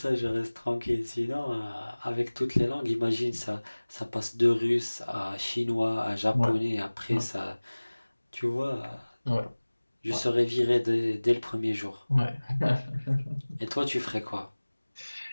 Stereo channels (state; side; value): inverted; both; correlation -1.00